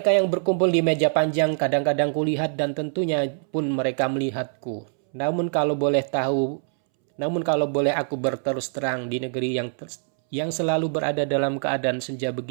yang berkumpul di meja panjang kadang-kadang kulihat dan tentunya pun mereka melihatku. Namun kalau boleh aku berterus terang di negeri yang selalu berada dalam keadaan senja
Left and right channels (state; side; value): silent; left; 63 dB below the other